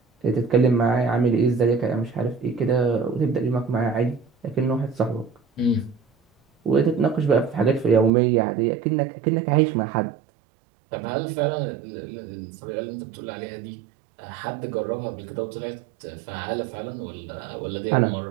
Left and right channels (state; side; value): drops out; left; at 8.1 s